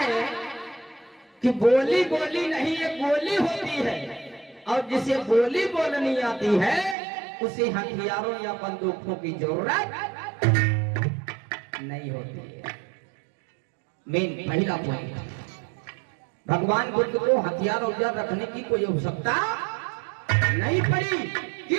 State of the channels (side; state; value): left; drops out; at 7.0 s